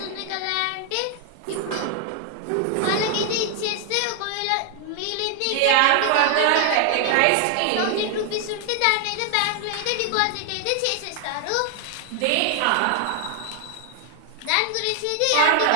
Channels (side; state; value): both; different; correlation 0.00